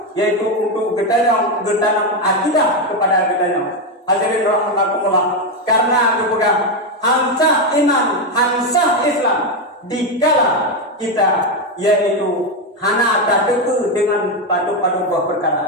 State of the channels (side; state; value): both; normal; correlation 0.08